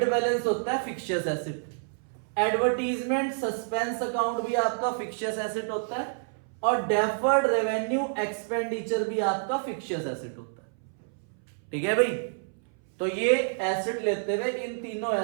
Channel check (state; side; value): silent; left; 59 dB below the other